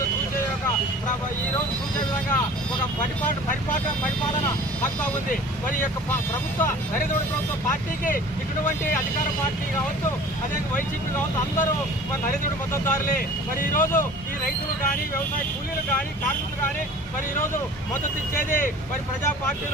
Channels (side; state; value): both; normal; correlation 0.44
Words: చూసే విధంగా ఒక పరిపాలన హక్కు ఉంది. మరి ఈ యొక్క ప్రభుత్వ నరేంద్ర మోడీ ప్రభుత్వ పార్టీకి ఇటువంటి అధికార పార్టీ కావచ్చు, అదే వైసీపీ కావచ్చు, అందరూ మరి నరేంద్ర మోడీ మద్దతుదారులే. మరి ఈరోజు ఈ రైతులు కానీ, వ్యవసాయ కూలీలు కానీ, కార్మికులు కానీ మరి ఈరోజు మద్దతు ఇచ్చేది మరి ప్రజా